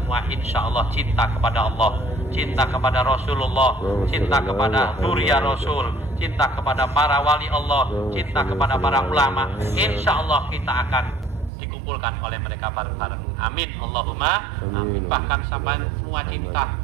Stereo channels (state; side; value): drops out; left; at 11.5 s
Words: insya Allah cinta kepada Allah, cinta kepada Rasulullah, cinta kepada Nuria Rasul, cinta kepada para wali Allah, cinta kepada para ulama. Insya Allah kita akan dikumpulkan oleh mereka bareng-bareng. Amin, Allahumma amin. Bahkan sampai semua cinta